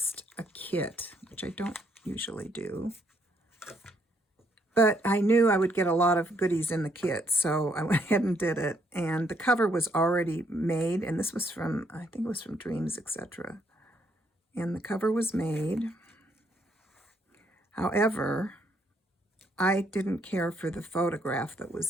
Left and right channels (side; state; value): both; normal; correlation 0.72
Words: a kit, which I don't usually do. But I knew I would get a lot of goodies in the kit, so I went ahead and did it. And the cover was already made, and this was from, I think it was from Dreams, etc. And the cover was made. However, I didn't care for the photograph that